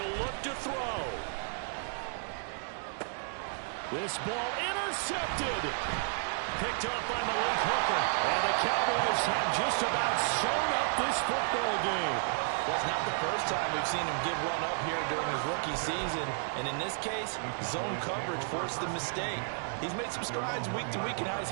look to throw. This ball intercepted. Picked off by Malik Hooker. And the Cowboys have just about sewn up this football game. Well, it's not the first time we've seen him give one up here during his rookie season. And in this case, zone coverage forced the mistake. He's made some strides week to week in how he's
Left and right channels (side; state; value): left; silent; digital silence